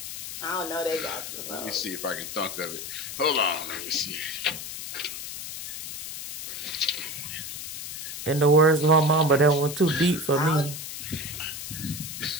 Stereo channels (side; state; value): left; noise; hiss, 8 dB below the sound